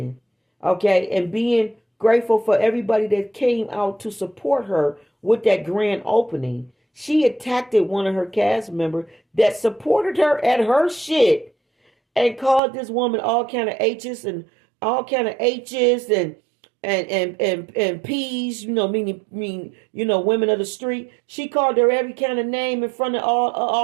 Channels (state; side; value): drops out; left; at 12.6 s